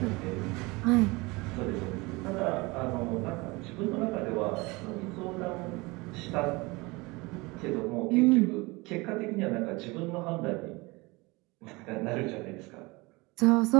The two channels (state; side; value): quieter; left; 24.3 dB